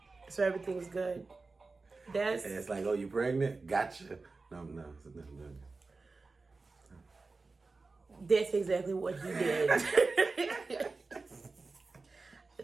so everything's good. And it's like, oh, you pregnant? Gotcha. No. That's exactly what he did.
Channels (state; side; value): quieter; left; 3.8 dB